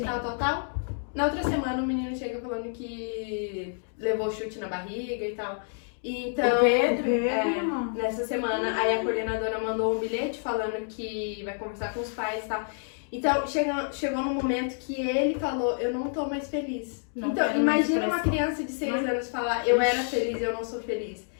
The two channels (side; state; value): right; silent; 59 dB below the other